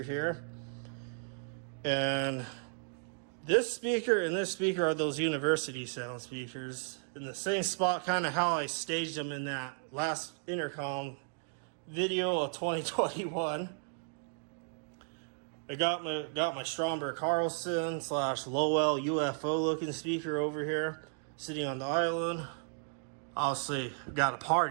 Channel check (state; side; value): silent; left; 55 dB below the other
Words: here. And this speaker and this speaker are those university sound speakers. In the same spot, kind of how I staged them in that last Intercom video of 2021. I got my Stromberg Carlson / Lowell UFO looking speaker over here, sitting on the island. Obviously, got a